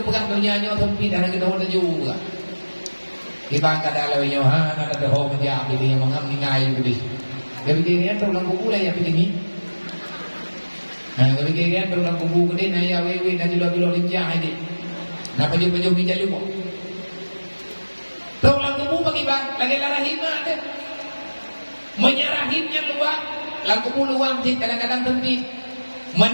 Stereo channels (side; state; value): both; inverted; correlation -1.00